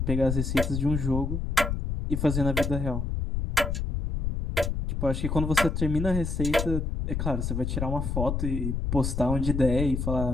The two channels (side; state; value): left; noise; rumble, 1 dB below the sound